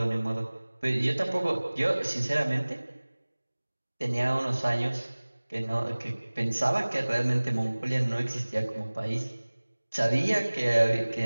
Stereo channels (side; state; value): both; inverted; correlation -1.00